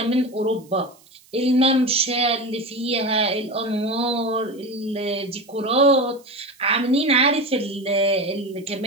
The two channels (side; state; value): right; noise; hiss, 28 dB below the sound